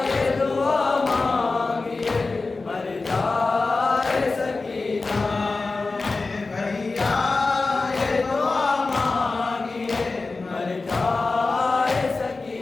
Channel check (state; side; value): quieter; right; 3.7 dB